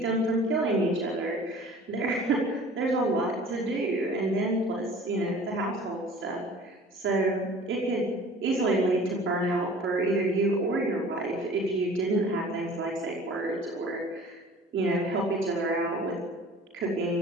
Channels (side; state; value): both; normal; correlation 0.46